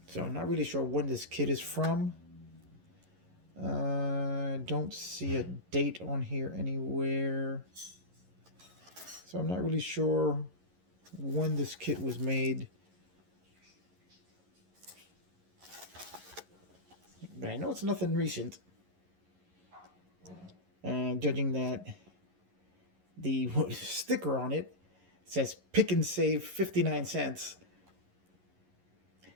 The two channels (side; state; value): left; late; 11 ms